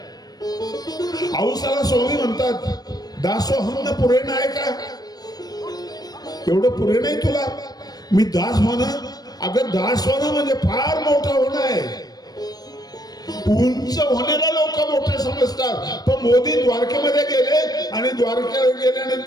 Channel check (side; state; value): right; late; 0.19 ms